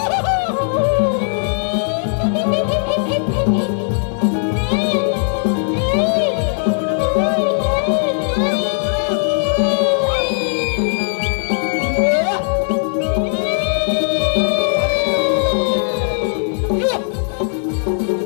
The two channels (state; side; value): silent; right; digital silence